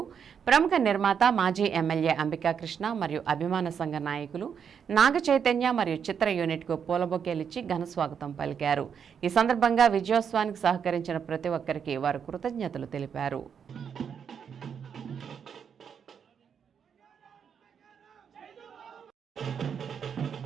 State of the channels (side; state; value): left; quieter; 7.3 dB